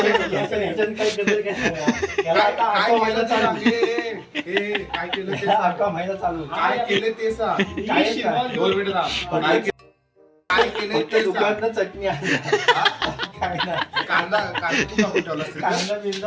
ह्याच्यात काय केलं काय सांगा? याला आता अख्खा महिना चालू. काय केलं ते ह्याला अख्खा महिना चालू. काय केलं ते सांग. काय काय? 2 मिनिटं थांब. काय केलं फक्त ते सांग. दुकानात चटणी आणली. काय नाही. कांदा तू कापून ठेवला असेल. कांदा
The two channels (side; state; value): both; identical; correlation 1.00